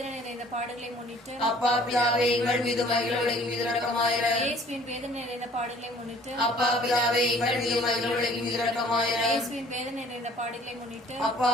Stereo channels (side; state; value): both; normal; correlation 0.54